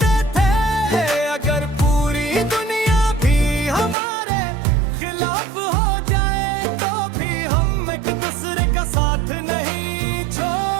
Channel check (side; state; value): left; drops out; at 4.0 s